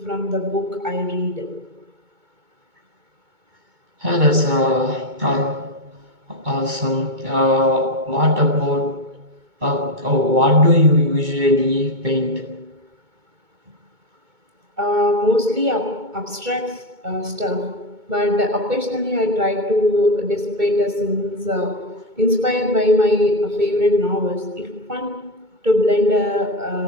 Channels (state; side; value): late; left; 2.2 ms